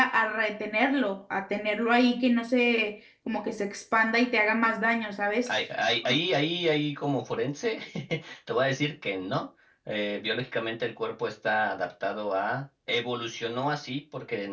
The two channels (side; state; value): both; identical; correlation 1.00